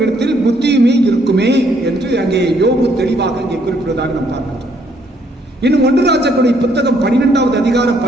புத்தியுமே இருக்குமே என்று அங்கே யோபு தெளிவாக இங்கே குறிப்பிடுவதாக நாம் பார்க்கிறோம். இன்னும் 1 ராஜாக்களுடைய புத்தகம் 12வது அதிகாரம்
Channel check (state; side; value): normal; both; correlation 0.68